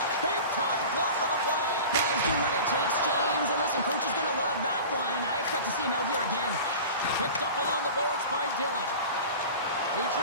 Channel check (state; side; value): inverted; both; correlation -0.36